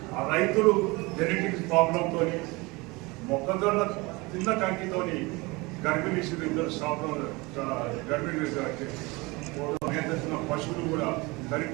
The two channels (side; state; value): left; quieter; 24.5 dB